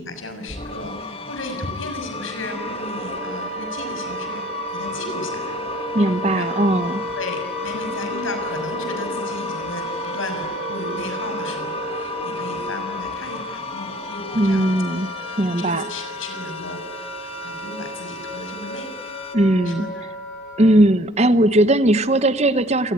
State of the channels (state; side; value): normal; both; correlation 0.55